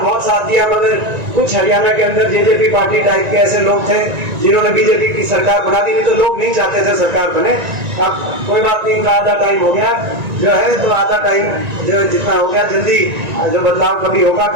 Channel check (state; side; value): late; left; 1.9 ms